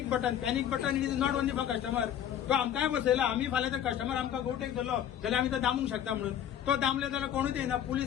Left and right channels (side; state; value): right; quieter; 10.0 dB